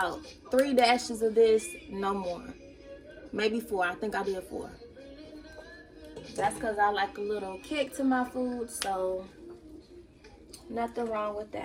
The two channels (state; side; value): identical; both; correlation 1.00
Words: 3 dashes of this, no more. Maybe 4. I think I did 4. That's because I like a little kick to my food, so nothing wrong with